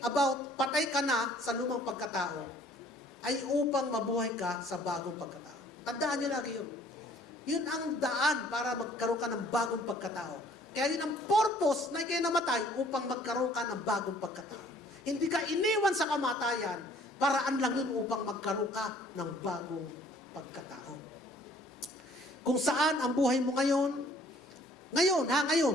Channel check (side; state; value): both; normal; correlation 0.57